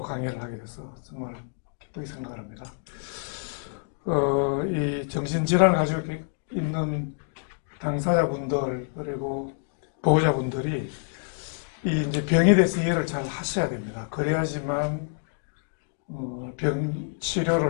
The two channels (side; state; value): right; silent; digital silence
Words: 강의를 하게 돼서 정말 기쁘게 생각합니다. 이 정신질환을 가지고 있는 당사자분들 그리고 보호자분들이 이 이제 병에 대해서 이해를 잘 하셔야 됩니다. 그래야지만 병